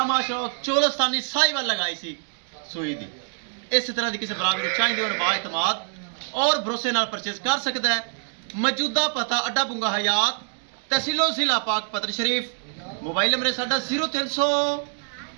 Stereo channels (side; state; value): left; silent; 56 dB below the other